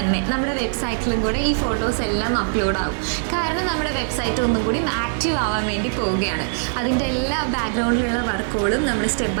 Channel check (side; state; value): left; silent; 58 dB below the other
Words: നമ്മുടെ വെബ്സൈറ്റിലും കൂടെ ഈ ഫോട്ടോസ് എല്ലാം അപ്ലോഡ് ആവും. കാരണം നമ്മുടെ വെബ്സൈറ്റ് ഒന്നും കൂടി ആക്റ്റീവ് ആവാൻ വേണ്ടി പോവുകയാണ്. അതിൻ്റെ എല്ലാ ബാക്ക്ഗ്രൗണ്ടിലുള്ള വർക്കുകളും നമ്മൾ സ്റ്റെപ്പ്